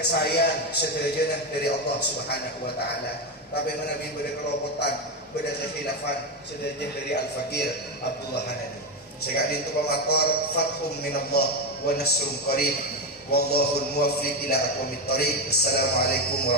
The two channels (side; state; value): both; normal; correlation 0.11